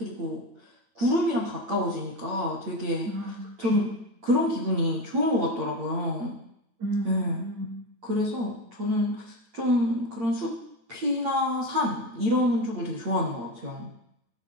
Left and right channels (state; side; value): late; left; 8.8 ms